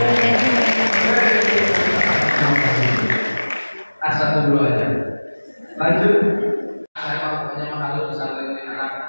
Satu dulu aja. Lanjut. Saya pokoknya menghalu pesantren ini anak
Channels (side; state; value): both; inverted; correlation -1.00